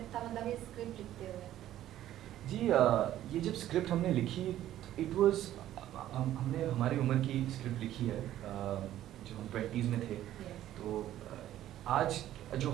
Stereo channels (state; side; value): quieter; left; 12.8 dB